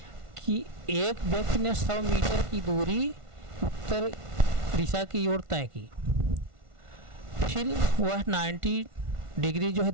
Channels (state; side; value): late; left; 1.5 ms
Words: कि एक व्यक्ति ने 100 मीटर की दूरी उत्तर दिशा की ओर तय की, फिर वह 90 डिग्री जो है